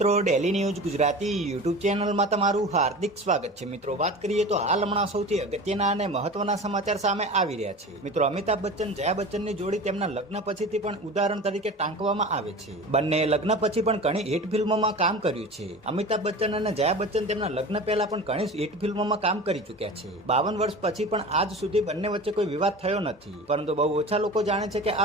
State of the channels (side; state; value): both; normal; correlation 0.34